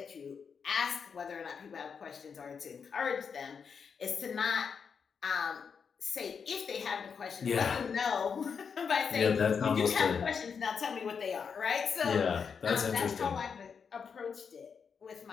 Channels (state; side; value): quieter; right; 6.3 dB